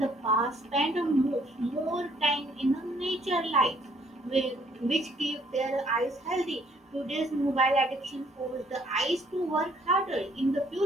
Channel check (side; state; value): both; normal; correlation 0.64